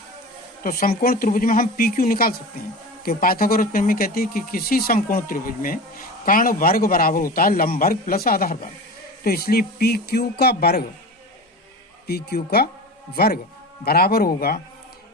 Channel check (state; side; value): normal; both; correlation 0.31